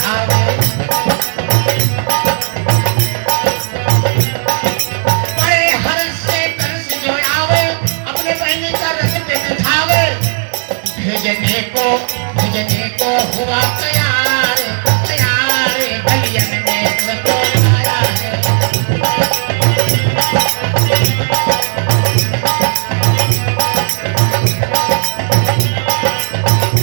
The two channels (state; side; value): silent; left; 64 dB below the other